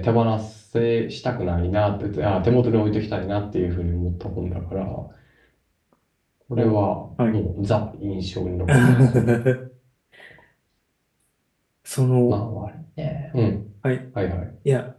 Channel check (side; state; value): both; identical; correlation 1.00